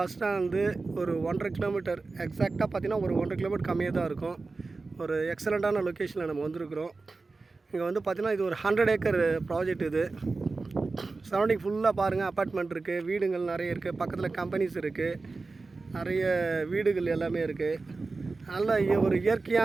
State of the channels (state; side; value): quieter; left; 3.8 dB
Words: ஸ்டாண்டு ஒரு 1.5 கிலோமீட்டர் எக்ஸாக்டாக பார்த்தீங்கன்னா ஒரு 1.5 கிலோமீட்டர் கம்மியாக தான் இருக்கும். ஒரு எக்ஸலண்ட்டான லொக்கேஷனில் நம்ம வந்திருக்கிறோம். இங்கே வந்து பார்த்திங்கன்னா இது ஒரு 100 ஏக்கர் ப்ராஜெக்ட். இது சரௌண்டிங் ஃபுல்லாக பாருங்கள், அப்பார்ட்மெண்ட் இருக்குது, வீடுகள் நிறைய இருக்குது, பக்கத்தில் கம்பெனிஸ் இருக்குது, நிறைய வீடுகள் எல்லாமே இருக்குது. நல்ல ஒரு